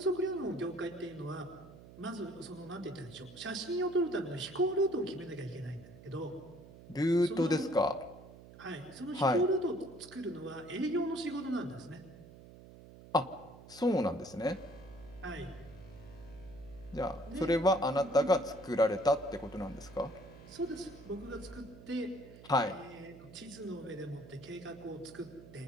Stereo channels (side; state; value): right; noise; hum, 18 dB below the sound